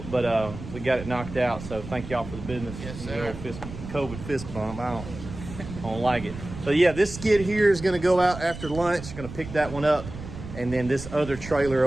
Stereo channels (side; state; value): right; noise; rumble, 11 dB below the sound